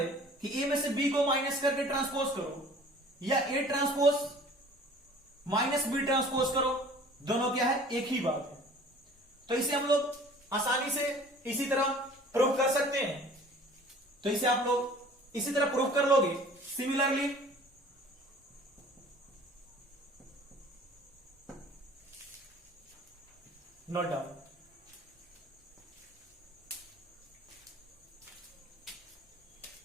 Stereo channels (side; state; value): both; normal; correlation 0.48